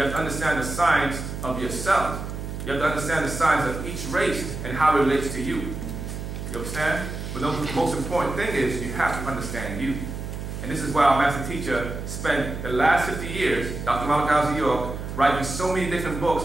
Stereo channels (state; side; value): noise; right; hum, 7 dB below the sound